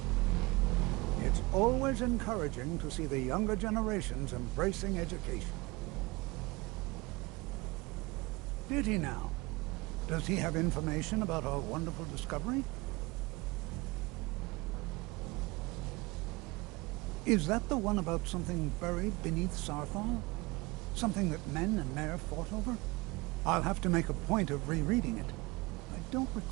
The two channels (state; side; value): quieter; left; 23.8 dB